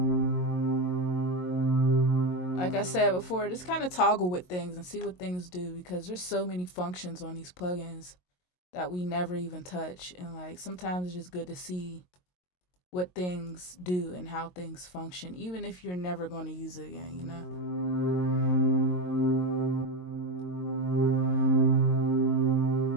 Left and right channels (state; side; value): late; right; 22 ms